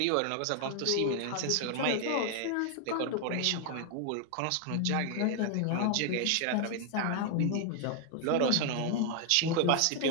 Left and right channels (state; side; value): different; both; correlation 0.00